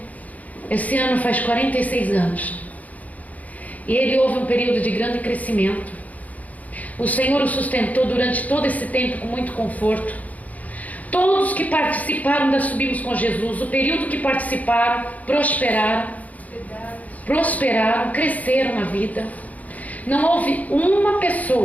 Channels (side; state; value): right; late; 0.075 ms